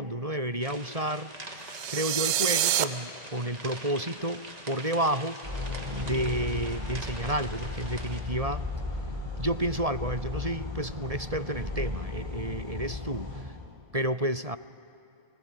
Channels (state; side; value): late; left; 2.2 ms